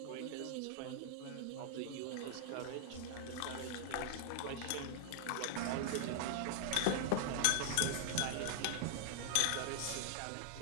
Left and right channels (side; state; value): both; different; correlation -0.01